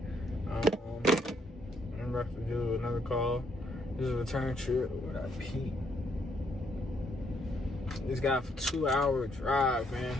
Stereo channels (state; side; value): normal; both; correlation 0.72